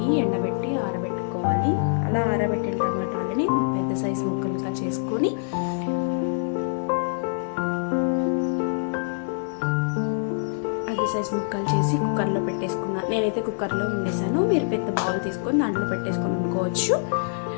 ఎండబెట్టి ఆరబెట్టుకోవాలి. అలా ఆరబెట్టిన టమాటాలని పెద్ద సైజు ముక్కలుగా చేసుకొని సైజ్ ముక్కలు చేసి కుక్కర్లో పెట్టేసుకున్నాను. నేనైతే కుక్కర్లో వండేసాను. మీరు పెద్ద బౌల్ తీసుకొని దాంట్లో పెట్టేసుకొని వండుకోవచ్చు.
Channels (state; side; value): silent; right; digital silence